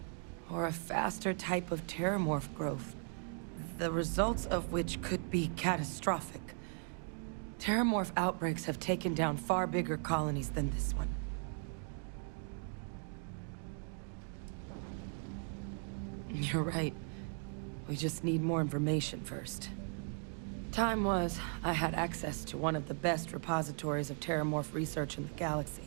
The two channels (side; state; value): left; silent; 53 dB below the other